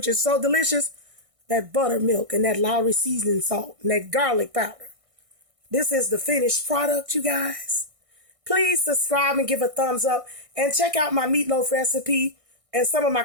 is so delicious, that buttermilk and that Lowry seasoning salt and that garlic powder. This is the finished product, you guys. Please subscribe and give a thumbs up and check out my meatloaf recipe and some of my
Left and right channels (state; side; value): late; left; 1.6 ms